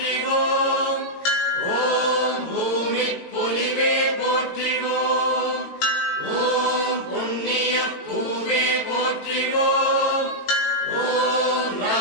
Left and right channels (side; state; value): right; late; 18 ms